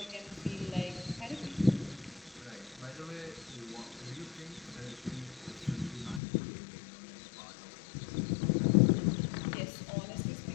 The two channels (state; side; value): drops out; right; at 6.2 s